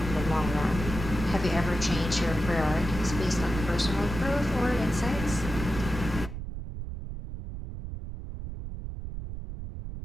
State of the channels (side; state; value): right; noise; rumble, 7 dB below the sound